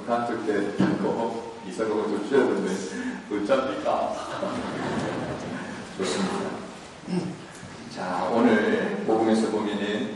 단축 때 하고 이사가고 좀 쉬었는데 어쩝니까? 좋습니다. 자, 오늘 복음에서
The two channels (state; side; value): identical; both; correlation 1.00